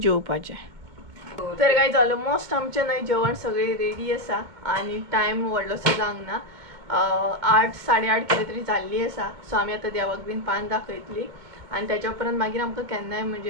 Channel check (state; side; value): late; left; 2.2 ms